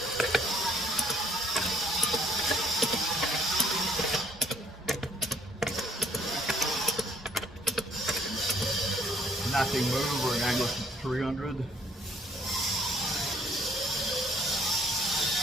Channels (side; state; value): both; normal; correlation 0.62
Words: Nothing moved. We're going to go to 300.